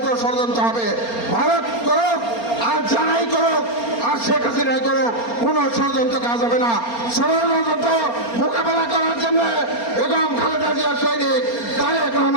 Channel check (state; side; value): late; right; 4.3 ms